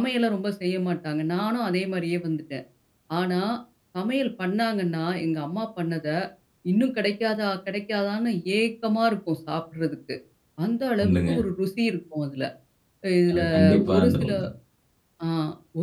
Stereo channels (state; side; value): identical; both; correlation 1.00